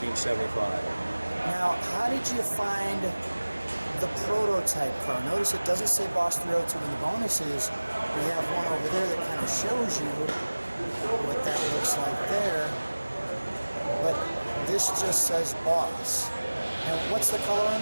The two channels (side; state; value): both; inverted; correlation -1.00